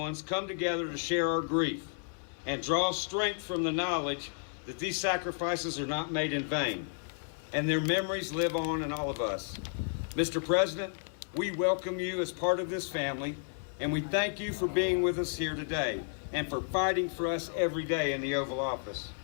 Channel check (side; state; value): right; silent; 56 dB below the other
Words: come together to share our grief and draw strength from the knowledge that these sacrifices are not made in vain, and their memories live on in all of us. Mr. President, we welcome you as part of this family, and we thank you for being with us here today and for fighting for us every day in the Oval Office.